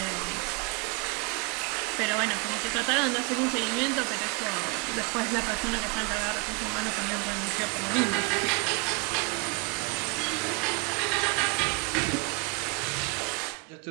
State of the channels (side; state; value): left; quieter; 28.1 dB